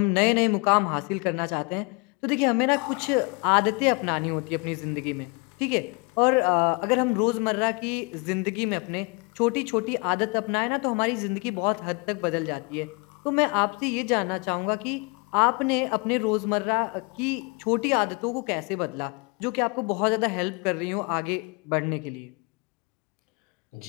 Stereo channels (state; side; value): quieter; right; 30.0 dB